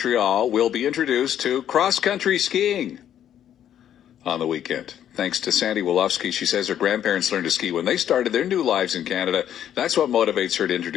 will be introduced to cross-country skiing on the weekend. Thanks to Sandy Wolofsky. She says her grandparents learned to ski when they started their new lives in Canada. That's what motivates her to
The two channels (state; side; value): quieter; right; 10.3 dB